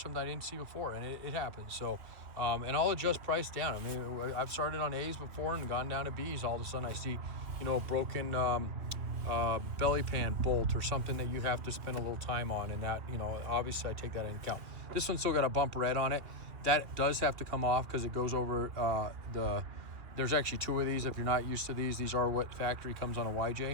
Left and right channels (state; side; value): late; left; 2.9 ms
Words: I didn't see before, and it happens. So, and I'll adjust price down. I mean, I've started on A's before and gone down to B's. All of a sudden I see, a broken belly pan bolt or something that you have to spend a little time on, and that, obviously I take that into account. This one's still got a bump red on it. That does have to come off because it goes over there's actually two of these. If you're not used to these are what factory comes on a